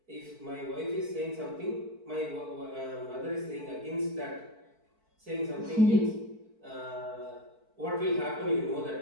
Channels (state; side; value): late; left; 4.5 ms